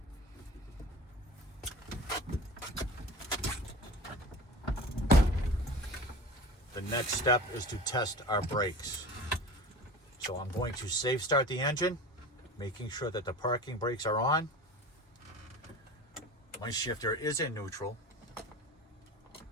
The next step is to test our brakes. So I'm going to safe start the engine, making sure that the parking brakes are on. My shifter is in neutral.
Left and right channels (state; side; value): normal; both; correlation 0.36